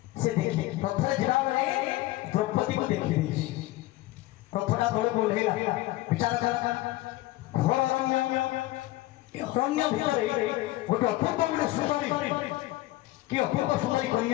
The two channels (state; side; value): quieter; right; 17.5 dB